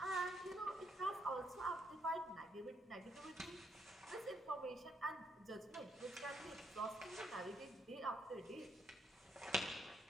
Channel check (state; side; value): normal; both; correlation 0.74